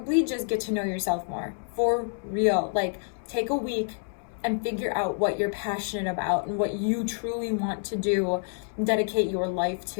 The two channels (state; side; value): silent; right; 60 dB below the other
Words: just get to know yourself more. For real. Like, take a week and figure out what you're passionate about and what you truly want to do, dedicate your life